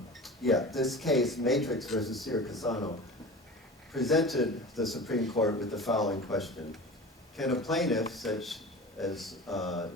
this case, Matrix versus Cassano, presented the Supreme Court with the following question. Can a plaintiff, such as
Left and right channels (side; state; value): both; normal; correlation 0.34